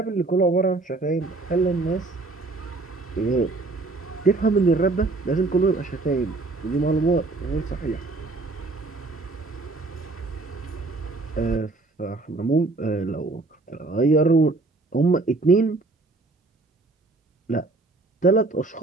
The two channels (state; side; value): quieter; left; 3.4 dB